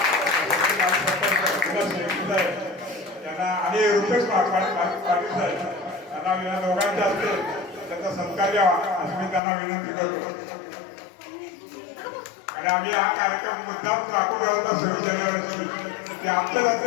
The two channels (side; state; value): right; drops out; at 9.4 s